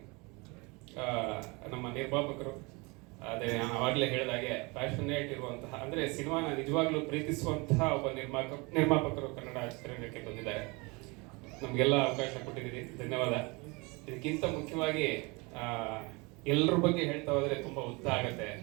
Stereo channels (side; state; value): left; quieter; 27.2 dB